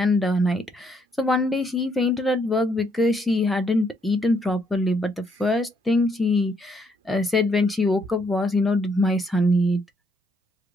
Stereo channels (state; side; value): normal; both; correlation 0.72